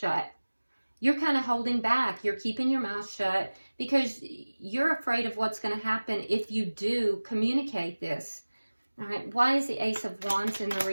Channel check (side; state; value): both; inverted; correlation -1.00